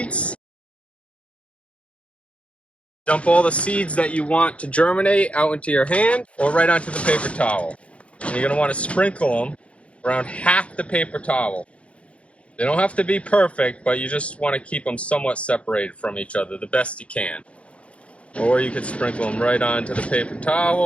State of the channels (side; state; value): right; late; 0.062 ms